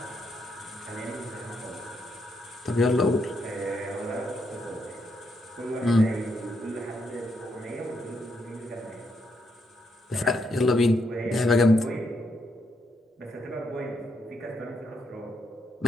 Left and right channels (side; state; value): both; normal; correlation 0.78